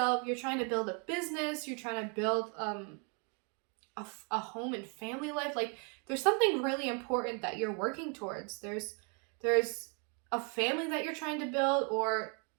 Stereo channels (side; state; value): left; quieter; 36.9 dB